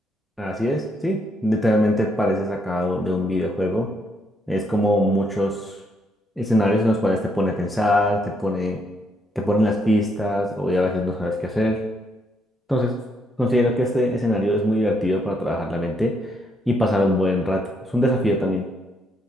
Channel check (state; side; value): normal; both; correlation 0.74